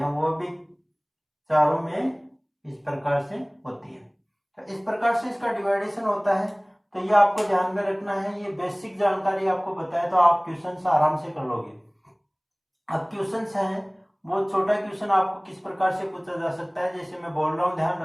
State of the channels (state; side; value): identical; both; correlation 1.00